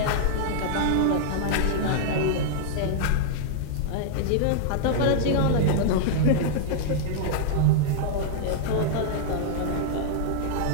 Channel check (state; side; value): different; both; correlation -0.01